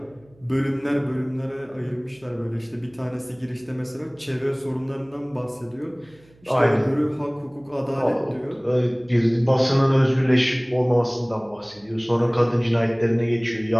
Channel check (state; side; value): noise; right; hum, 29 dB below the sound